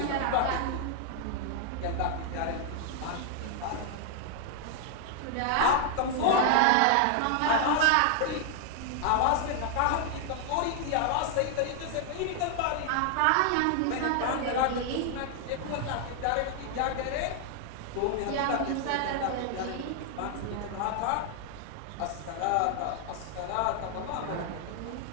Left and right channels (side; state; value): both; different; correlation 0.00